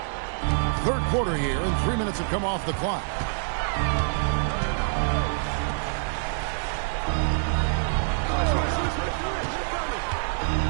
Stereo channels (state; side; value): silent; left; digital silence